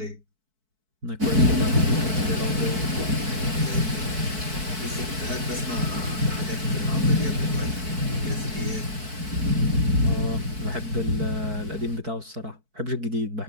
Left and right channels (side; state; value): left; late; 4.6 ms